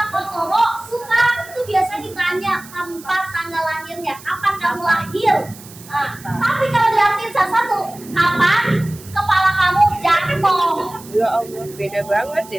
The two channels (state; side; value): noise; right; hiss, 19 dB below the sound